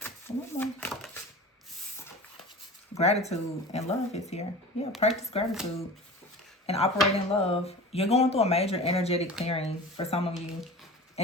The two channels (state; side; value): normal; both; correlation 0.35